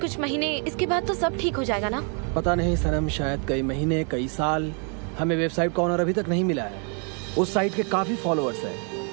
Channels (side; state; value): left; quieter; 39.6 dB